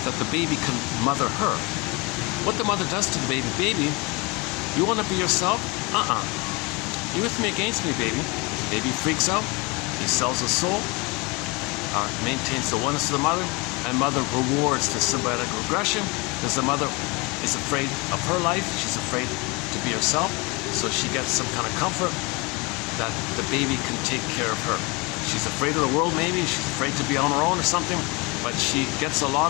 that the baby can mother her, what the mother does to the baby, you want to be yourself? You with me against me, baby. Baby freaks out, he sells his soul, maintains the oneness of the mother, and mother rewards the symbiotic regression because the mother is afraid of her life, she's afraid to be herself, so she gets some kind of comfort that the baby can take care of her. She's afraid of the world maybe, she's afraid to be on her own or something, but she gets a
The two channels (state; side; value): quieter; right; 27.3 dB